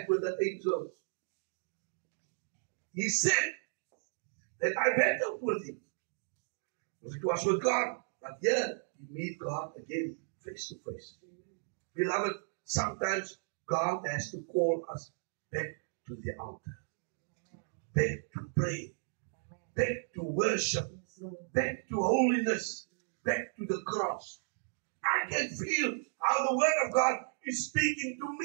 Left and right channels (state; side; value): silent; left; digital silence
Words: with the angels. He said that I battled with him. It was with God. But here, you meet God again face to face. Beloved, sometimes God has to call us back to the altar. Back to pray. Back to worship. Back to holiness. Back to the cross. I can feel how the Word of God is speaking to